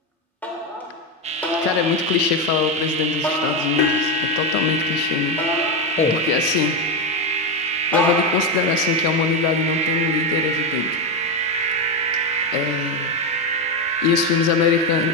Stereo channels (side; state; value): both; normal; correlation 0.10